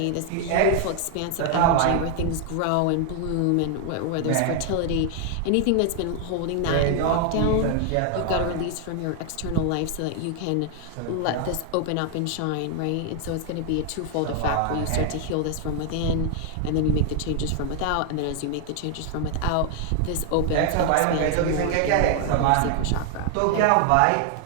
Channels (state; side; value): different; both; correlation 0.00